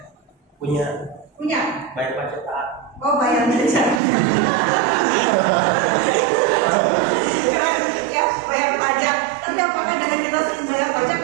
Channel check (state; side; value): drops out; left; at 4.0 s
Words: Punya. Bayar pajak taat. Oh, bayar pajak. Bayar pajak. Tapi apakah dengan kita bayar pajak